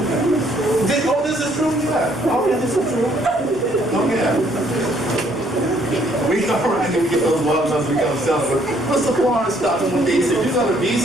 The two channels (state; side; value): normal; both; correlation 0.66